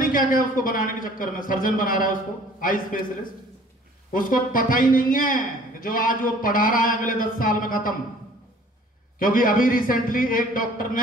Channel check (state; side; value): normal; both; correlation 0.53